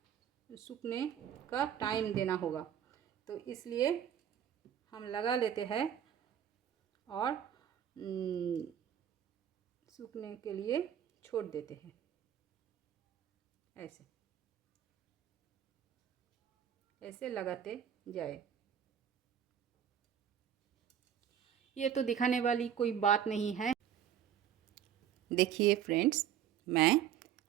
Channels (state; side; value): quieter; left; 9.5 dB